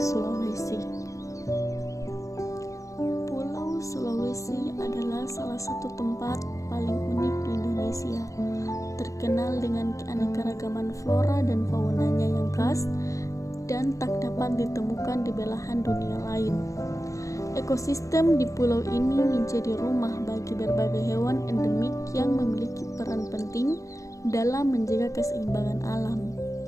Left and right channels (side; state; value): right; late; 0.16 ms